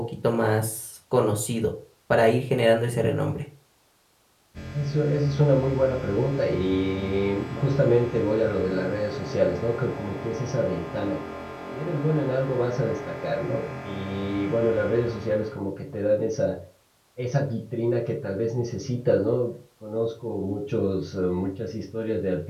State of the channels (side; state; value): both; identical; correlation 1.00